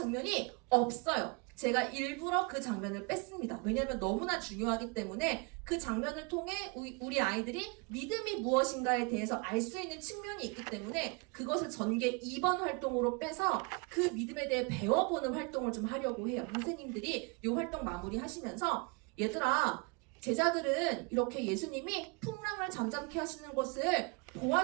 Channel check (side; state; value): left; quieter; 30.7 dB